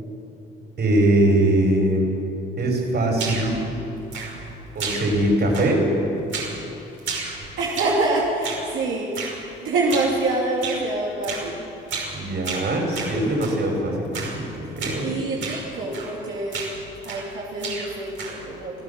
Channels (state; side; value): normal; both; correlation 0.47